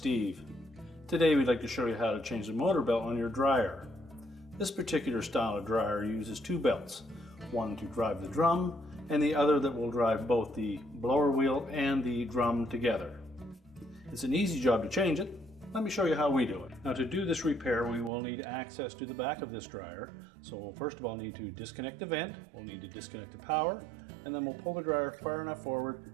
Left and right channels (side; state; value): left; drops out; at 18.1 s